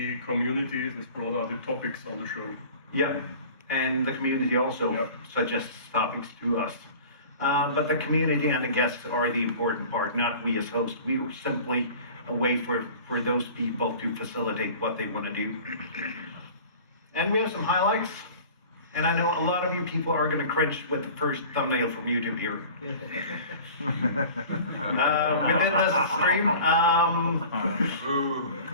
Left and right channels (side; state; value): both; inverted; correlation -0.42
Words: community is, as broad are the topics on the show. Yeah, and the community also suggests topics to us. But the community and the guests are the important part, not we as hosts. We are simply a way for those people to facilitate what they want to do. And we have some highlights. And I know a lot of you people are going to cringe with the first thumbnail from YouTube here. We did this stream.